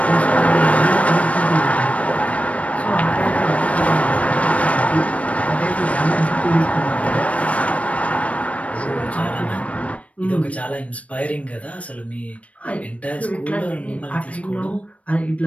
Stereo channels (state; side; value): late; right; 0.065 ms